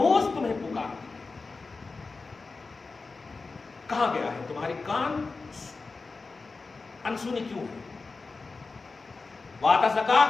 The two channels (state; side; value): quieter; right; 4.0 dB